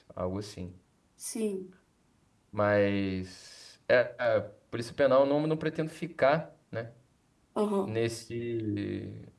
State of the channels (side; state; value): both; identical; correlation 1.00